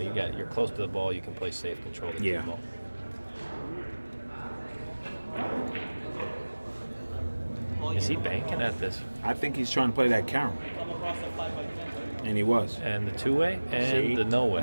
close to the ball, you can play safe, control the Yeah. ball. Is he banking at this? I think he's trying to play that carom. And he was. And the two-way and See? the no-way.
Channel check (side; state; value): both; inverted; correlation -1.00